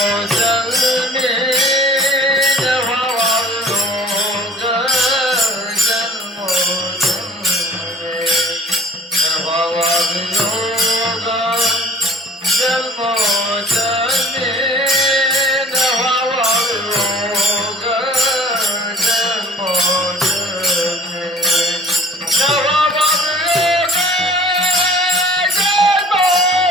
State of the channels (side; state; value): both; normal; correlation 0.48